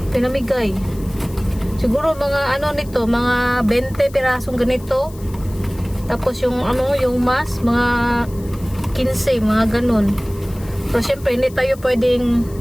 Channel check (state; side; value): noise; left; hiss, 22 dB below the sound